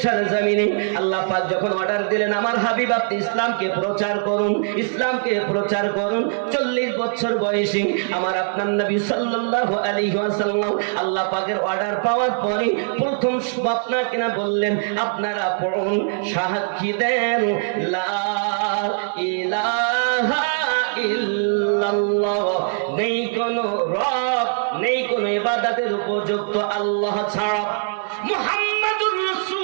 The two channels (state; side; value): silent; left; digital silence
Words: সরজমিনে আল্লাহ পাক যখন অর্ডার দিলেন আমার হাবিব আপনি ইসলামকে প্রচার করুন, ইসলামকে প্রচার করুন, 40 বছর বয়সী আমার আপনার নবী সাল্লাল্লাহু আলাইহি ওয়াসাল্লাম আল্লাহ পাকের অর্ডার পাওয়ার পরে প্রথম আপনাকে না বললেন আপনারা পড়ুন, সাক্ষী দেন লা ইলাহা ইল্লাল্লাহ, নেই কোন রব, নেই কোন ইবাদতের উপযুক্ত আল্লাহ ছাড়া, মুহাম্মাদুর